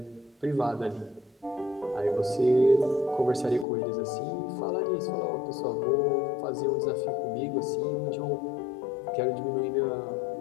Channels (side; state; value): right; drops out; at 3.7 s